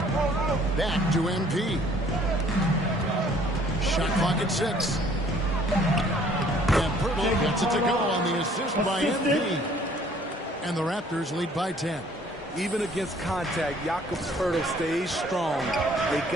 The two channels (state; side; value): normal; both; correlation 0.58